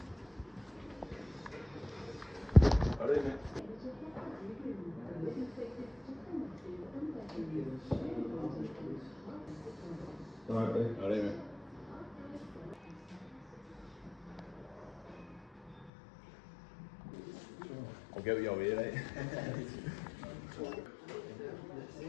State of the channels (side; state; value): right; drops out; at 15.9 s